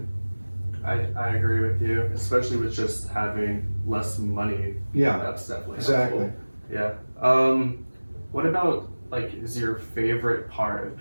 I agree with you, especially with just having less money. Yeah, that's definitely exactly. Helpful. Yeah. What about is your favorite part of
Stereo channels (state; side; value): inverted; both; correlation -1.00